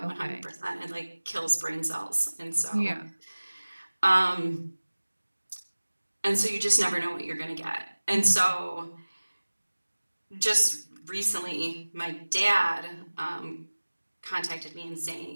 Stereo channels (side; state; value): both; inverted; correlation -1.00